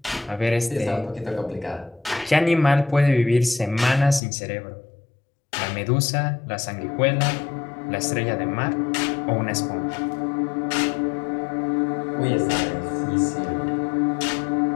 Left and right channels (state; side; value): drops out; right; at 4.2 s